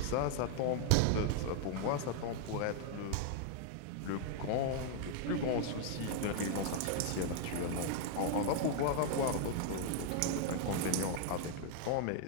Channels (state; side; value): different; both; correlation 0.00